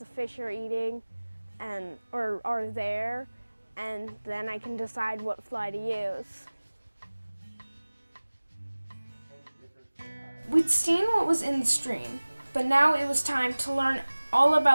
fish are eating or are there, and then I can decide what fly to use. We'd seen what was in the stream, but now it was time to learn all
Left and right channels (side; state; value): both; inverted; correlation -1.00